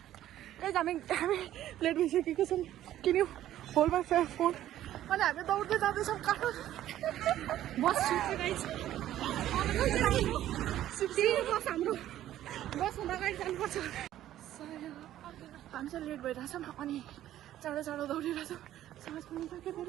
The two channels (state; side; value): quieter; left; 12.8 dB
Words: हामी लेट भइसकेको छौँ किन होल्ड माई फोन अनि हामी दौड्दै जाँदैछौँ काठमाडौँ बस बस हाम्रो बसमा अगाडि जानुपर्छ हामी चाहिँ लेट भइरहेछौँ अनि चाँडो चाँडो दौडिरहेछौँ साँझ पनि सक्यो